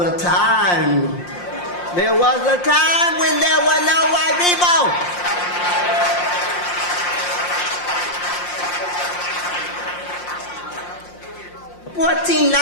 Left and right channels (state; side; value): late; right; 5.7 ms